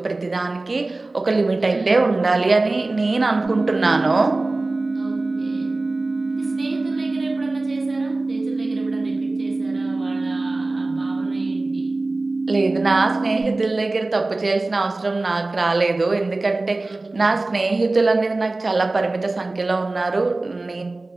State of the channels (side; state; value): left; quieter; 3.1 dB